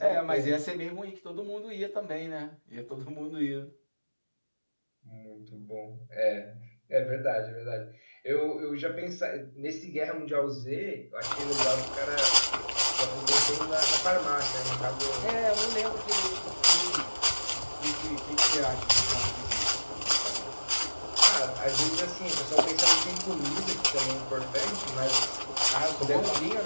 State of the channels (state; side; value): inverted; both; correlation -1.00